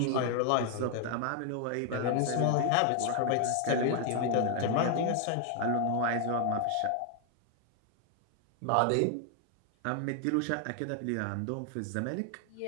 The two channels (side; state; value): both; different; correlation 0.00